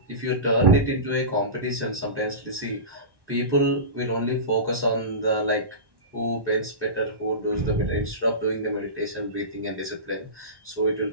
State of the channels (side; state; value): left; late; 1.1 ms